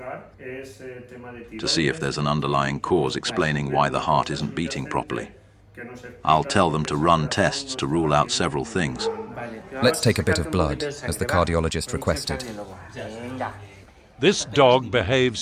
to see if there's an underlying cause explaining why the heart isn't beating properly. I'll tell them to run tests to rule out several things. Let's take a bit of blood, as the cardiologist requested. This dog behaves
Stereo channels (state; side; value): identical; both; correlation 1.00